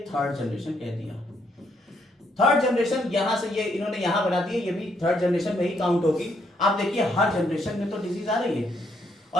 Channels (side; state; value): both; normal; correlation 0.73